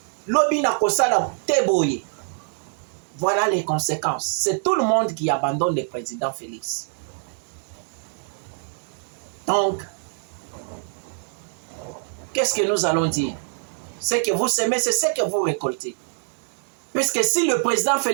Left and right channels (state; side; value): silent; left; 59 dB below the other